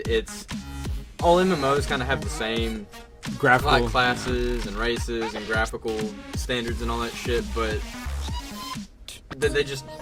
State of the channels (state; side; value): identical; both; correlation 1.00